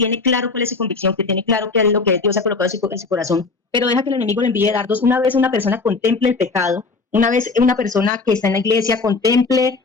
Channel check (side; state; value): right; quieter; 4.1 dB